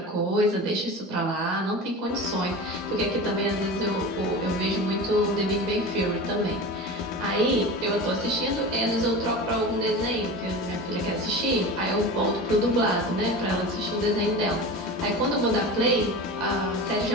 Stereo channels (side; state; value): both; normal; correlation 0.31